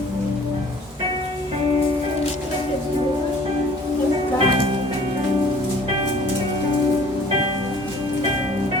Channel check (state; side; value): normal; both; correlation 0.53